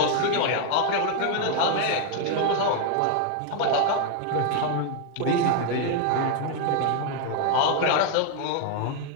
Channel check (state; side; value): different; both; correlation 0.00